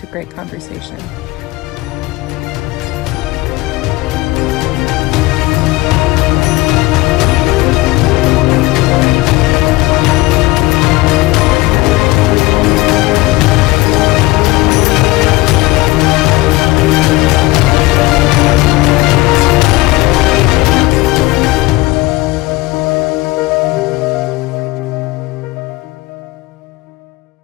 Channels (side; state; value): right; quieter; 20.1 dB